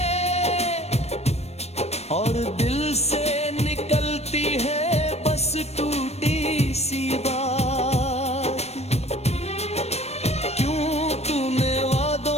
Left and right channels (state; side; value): late; right; 0.31 ms